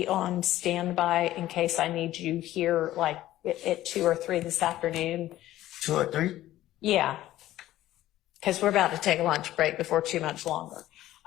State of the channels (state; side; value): quieter; right; 14.5 dB